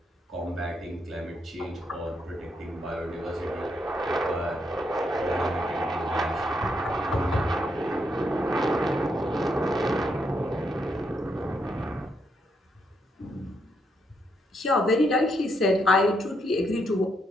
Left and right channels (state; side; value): normal; both; correlation 0.78